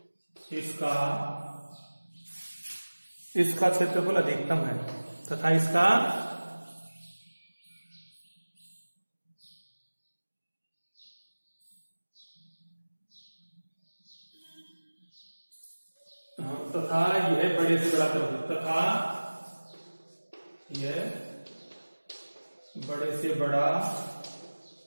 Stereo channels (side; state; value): both; inverted; correlation -1.00